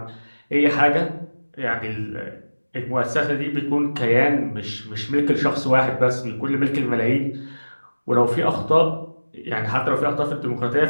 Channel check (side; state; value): both; inverted; correlation -1.00